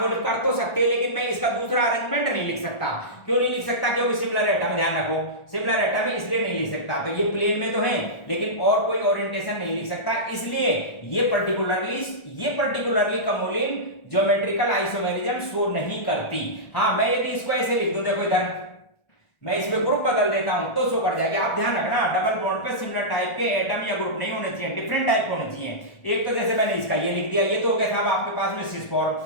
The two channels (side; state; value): right; late; 1.4 ms